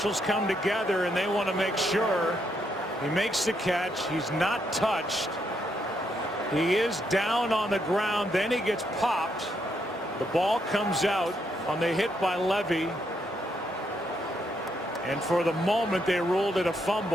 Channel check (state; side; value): normal; both; correlation 0.77